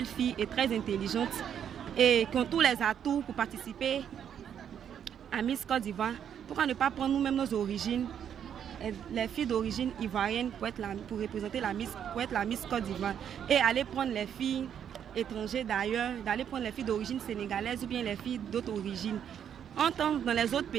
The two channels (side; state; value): left; quieter; 8.8 dB